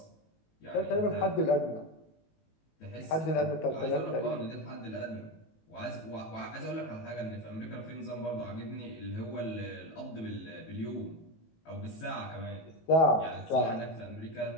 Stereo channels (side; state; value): right; late; 19 ms